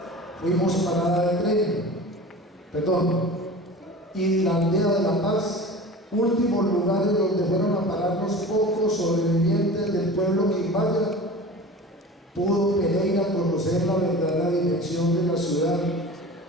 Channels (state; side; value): normal; both; correlation 0.37